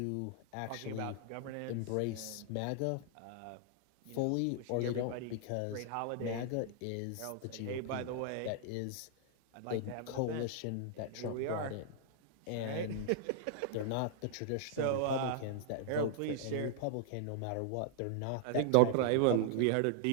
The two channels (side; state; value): both; different; correlation -0.01